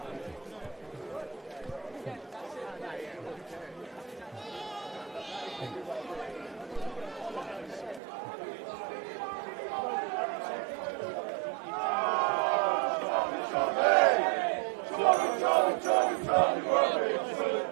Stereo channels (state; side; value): drops out; left; at 8.0 s